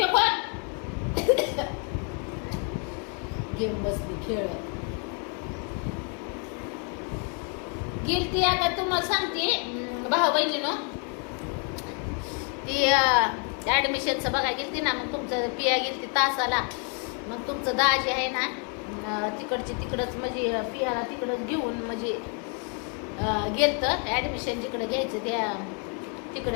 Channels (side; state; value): right; quieter; 39.6 dB